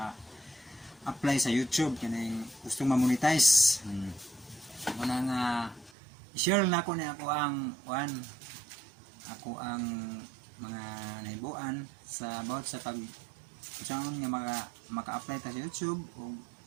sa YouTube. Kaning gusto ma-monetize. Muna nga i-share na ako na ako ang mga naibuan sa about sa pag saan nga maka-apply ta sa YouTube o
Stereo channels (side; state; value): left; drops out; at 5.9 s